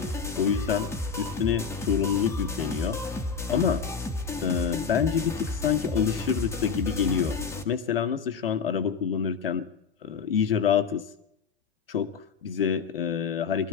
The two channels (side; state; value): right; quieter; 6.2 dB